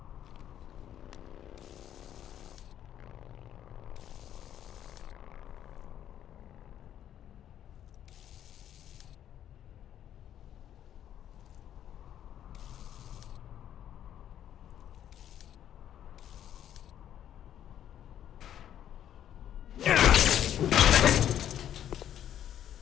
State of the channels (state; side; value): quieter; right; 10.6 dB